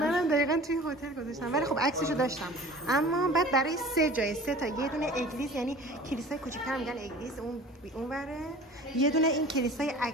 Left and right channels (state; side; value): normal; both; correlation 0.43